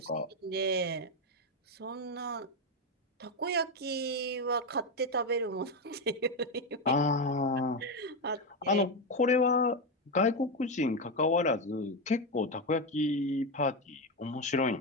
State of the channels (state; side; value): normal; both; correlation 0.10